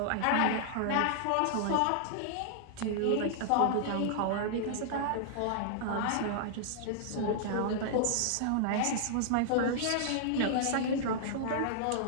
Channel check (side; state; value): both; different; correlation -0.01